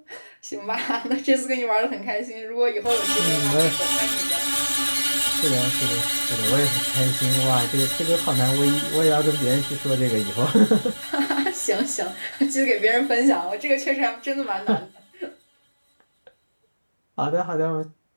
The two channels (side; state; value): both; inverted; correlation -1.00